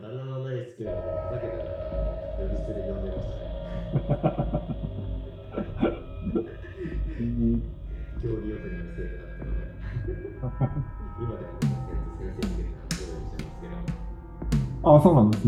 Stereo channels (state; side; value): identical; both; correlation 1.00